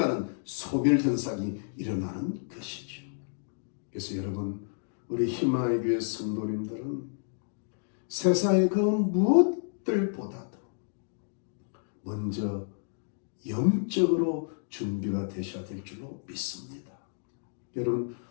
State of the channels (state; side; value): silent; right; digital silence